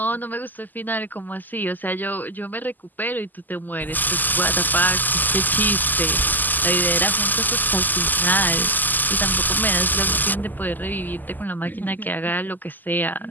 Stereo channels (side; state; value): right; late; 0.086 ms